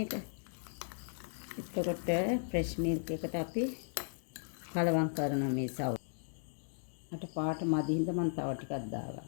ඒක. එතකොට ෆ්‍රෙෂ් මිල්ක් එකට අපි කලවම් කරන මේ සව්. අට පාට මදි හින්දා මම තව ටිකක්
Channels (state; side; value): silent; right; digital silence